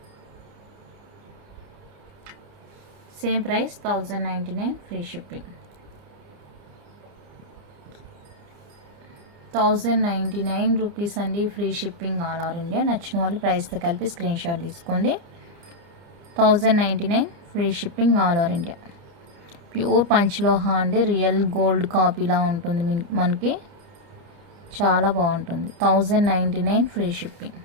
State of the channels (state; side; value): late; left; 29 ms